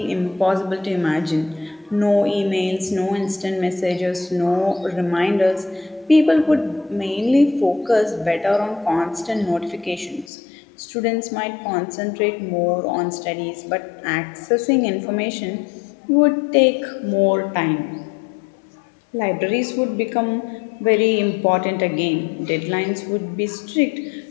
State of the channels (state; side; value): drops out; right; at 10.3 s